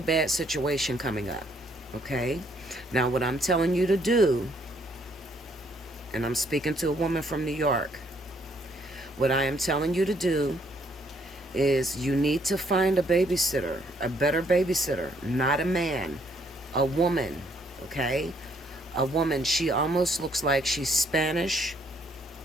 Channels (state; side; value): normal; both; correlation 0.68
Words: bad situation coming up. Okay? Now, what I'm telling you to do, and I'm speaking to a woman from New York, what I am telling you to do is you need to find a babysitter, a better babysitter, not a man, a woman, okay? A woman. She almost looks like she's Spanish.